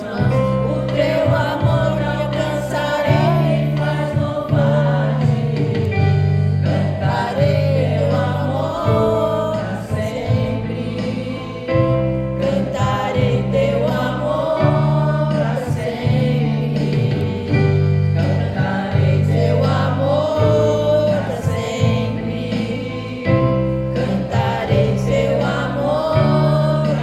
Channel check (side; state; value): both; identical; correlation 1.00